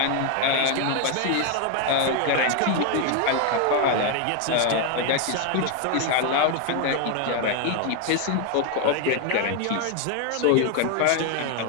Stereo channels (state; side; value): different; both; correlation 0.01